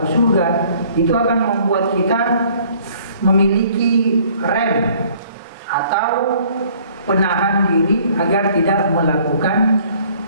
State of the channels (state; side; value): inverted; both; correlation -0.58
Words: surga, itu akan membuat kita memiliki rem atau penahan diri agar tidak melakukan